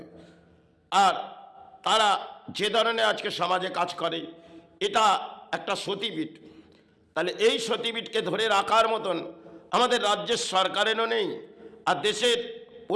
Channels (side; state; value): both; identical; correlation 1.00